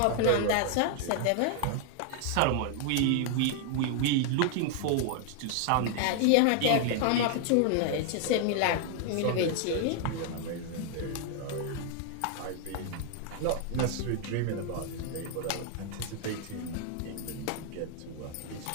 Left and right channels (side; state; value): both; different; correlation 0.00